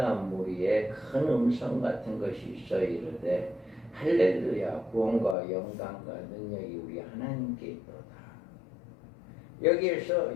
무리에 큰 음성 같은 것이 있어 이르되 할렐루야 구원과 영광과 능력이 우리 하나님께 있도다.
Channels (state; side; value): drops out; right; at 5.4 s